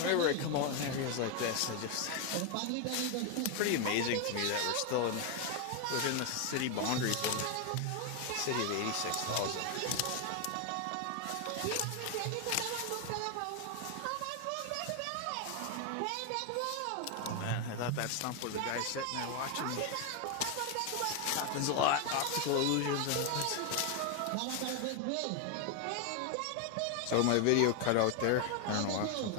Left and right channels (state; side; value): different; both; correlation 0.01